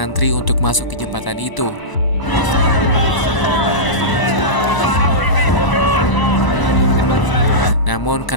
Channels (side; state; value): right; late; 1.0 ms